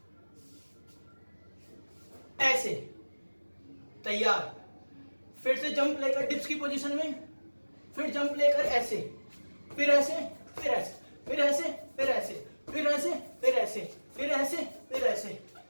ऐसे, तैयार। फिर से जंप लेकर डिप्स की पोजीशन में, फिर जंप लेकर ऐसे, फिर ऐसे, फिर ऐसे, फिर ऐसे, फिर ऐसे, फिर ऐसे, फिर ऐसे, फिर ऐसे, फिर ऐसे।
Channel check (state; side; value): inverted; both; correlation -1.00